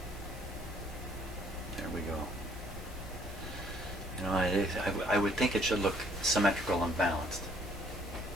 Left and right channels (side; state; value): both; normal; correlation 0.62